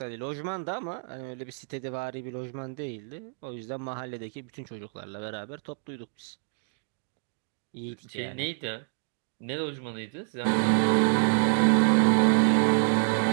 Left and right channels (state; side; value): silent; left; 59 dB below the other